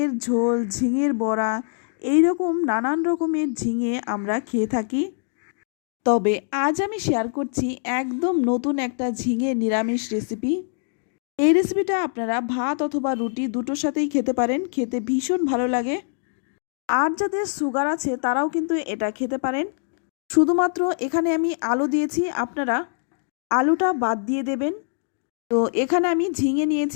ঝোল, ঝিঙের বড়া, এই রকম নানান রকমের ঝিঙে আমরা খেয়ে থাকি। তবে আজ আমি শেয়ার করছি একদম নতুন একটা ঝিঙে নিরামিষ রেসিপি। এই রেসিপিটা আপনারা ভাত অথবা রুটি দুটোর সাথেই খেতে পারেন, খেতে ভীষণ ভালো লাগে। আর যাদের সুগার আছে তারাও কিন্তু এটা খেতে পারেন। শুধুমাত্র এখানে আমি আলু দিয়েছি, আপনারা আলুটা বাদ দিয়ে দেবেন। তো এখানে আমি ঝিঙে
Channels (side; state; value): right; silent; digital silence